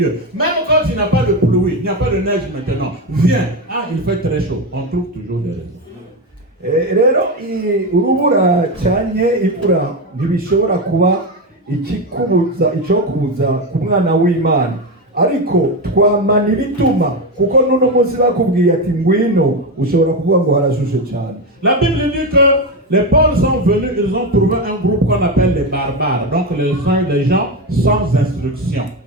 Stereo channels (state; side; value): normal; both; correlation 0.14